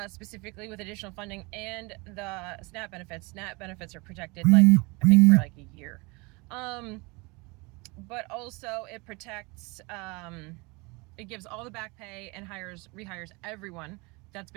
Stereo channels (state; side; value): quieter; left; 26.7 dB